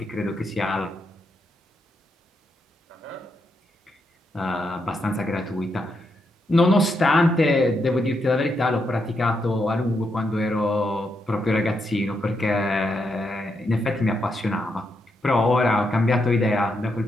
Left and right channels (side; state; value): both; normal; correlation 0.81